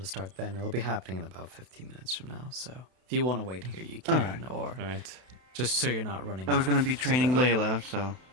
start then. It'll be happening in about 15 minutes from now, so if you want to wait here, you can, or just so you're not running I was going to be training Layla, so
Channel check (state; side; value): late; left; 32 ms